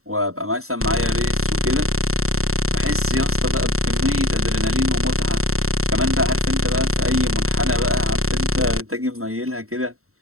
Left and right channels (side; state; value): left; late; 0.63 ms